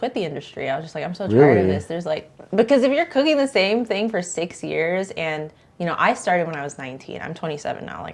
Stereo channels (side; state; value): both; identical; correlation 1.00